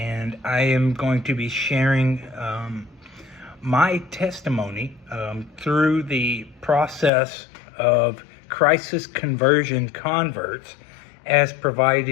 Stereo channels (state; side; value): drops out; right; at 7.1 s